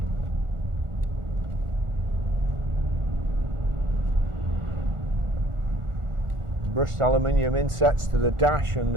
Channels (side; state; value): left; late; 1.4 ms